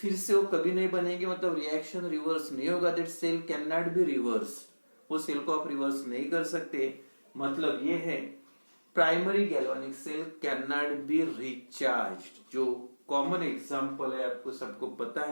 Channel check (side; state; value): both; inverted; correlation -1.00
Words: से वो कभी नहीं बनेंगे। मतलब रिएक्शन रिवर्स नहीं होगा। That cell can not be reverse. वो सेल को आप रिवर्स नहीं कर सकते। मतलब ये है primary galvanic cell can not be recharged. जो कॉमन एग्जांपल है आपको सबको पता